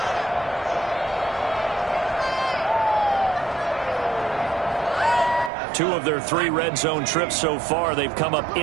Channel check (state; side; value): drops out; left; at 5.5 s